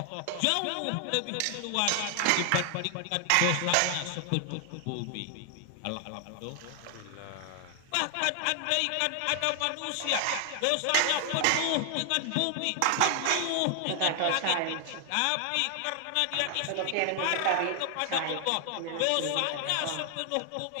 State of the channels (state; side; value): different; both; correlation 0.00